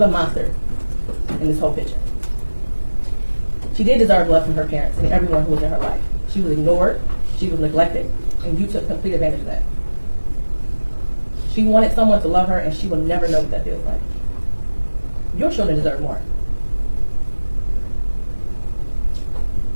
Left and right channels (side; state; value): both; inverted; correlation -1.00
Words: monster in this whole picture. She did deserve love from her parents and everyone who was in her life. She was ignored, she was neglected, and you took complete advantage of that. She wanted someone to love her, and she will never know what that feels like. Your children deserve more.